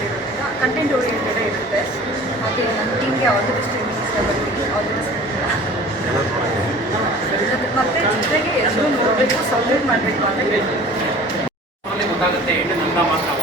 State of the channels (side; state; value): both; normal; correlation 0.45